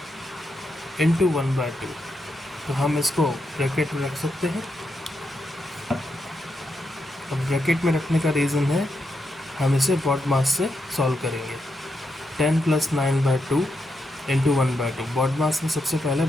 × 1/2, तो हम इसको ब्रैकेट में रख सकते हैं। अब ब्रैकेट में रखने का रीज़न है हम इसे बॉडमास से सॉल्व करेंगे। 10 + 9/2 × 1/2, बॉडमास में सबसे पहले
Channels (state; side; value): normal; both; correlation 0.83